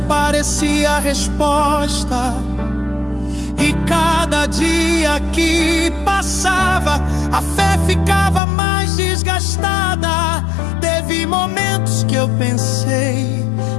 parecia a resposta. E cada dia que passava, a fé ficava mais desgastada. Teve momentos que eu pensei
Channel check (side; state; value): right; drops out; at 8.4 s